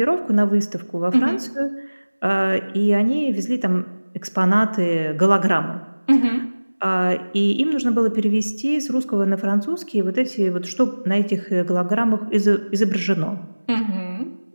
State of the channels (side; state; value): both; inverted; correlation -1.00